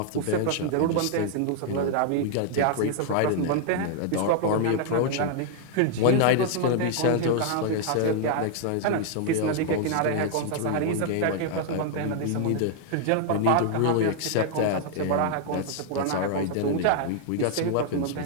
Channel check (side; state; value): both; different; correlation 0.00